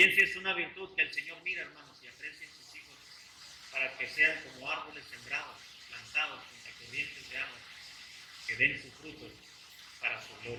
es una virtud que el Señor mira, hermanos, y aprecia en sus hijos para que sean como árboles sembrados, plantados junto a corrientes de agua, que den sus frutos para su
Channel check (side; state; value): both; identical; correlation 1.00